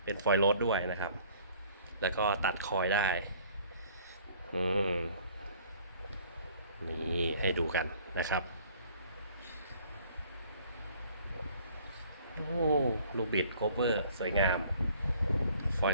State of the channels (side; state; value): both; inverted; correlation -0.55